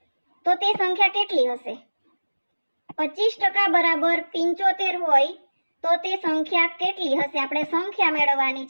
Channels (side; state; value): both; inverted; correlation -1.00